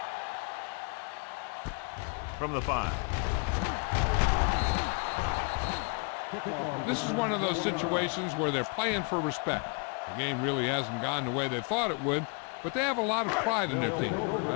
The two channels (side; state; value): right; quieter; 34.8 dB